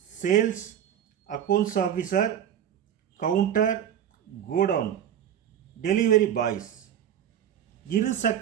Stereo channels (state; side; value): quieter; left; 9.8 dB